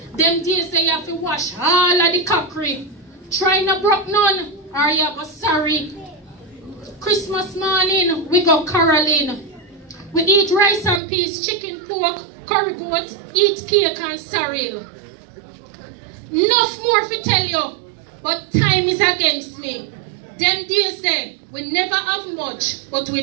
Them days that you have to wash all of the cockery. Try not broke none or you go sorry. Christmas morning, we go caroling. We eat rice and peas, chicken, pork, curry goat, eat cake and sorrel. Enough more to tell you, but time is against me. Them days there, we never have much, but we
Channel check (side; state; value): left; drops out; at 11.0 s